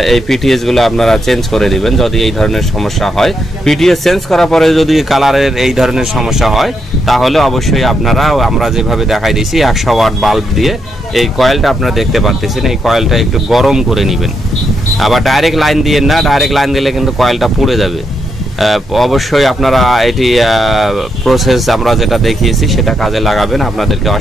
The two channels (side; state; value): both; normal; correlation 0.80